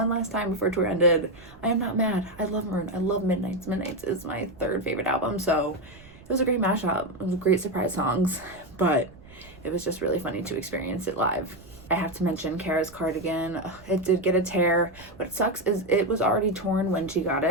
before tour ended. I am not mad. I love Maroon. I love Midnights. Midnights is my third favorite album, so it was a great mashup. It was great surprise songs, but it was just really funny to experience it live. I have to mention Cara's cardigan. Ugh, it did get a tear. What sucks is it was already torn when she got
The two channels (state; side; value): noise; right; rumble, 22 dB below the sound